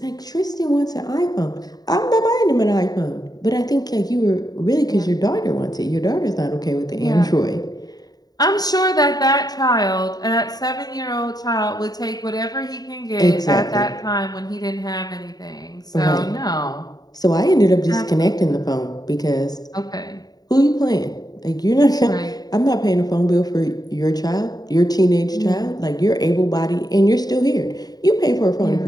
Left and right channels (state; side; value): late; right; 0.19 ms